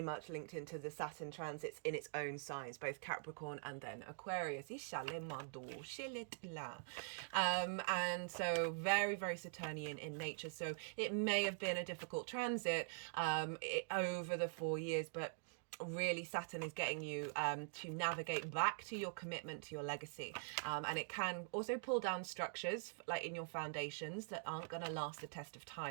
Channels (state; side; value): silent; left; digital silence